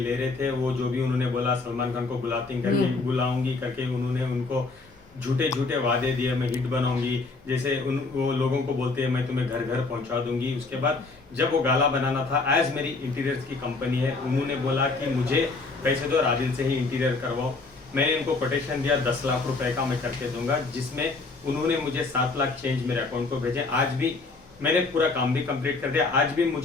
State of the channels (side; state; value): right; quieter; 3.8 dB